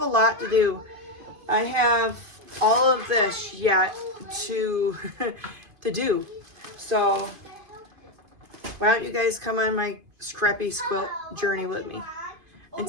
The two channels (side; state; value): left; late; 2.5 ms